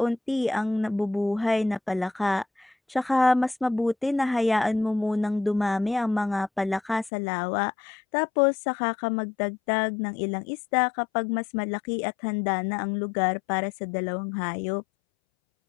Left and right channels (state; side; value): drops out; right; at 7.1 s